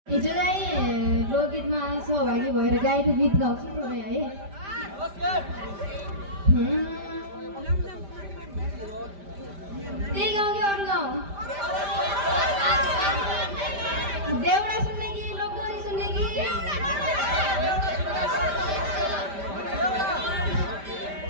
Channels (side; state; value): left; late; 5.1 ms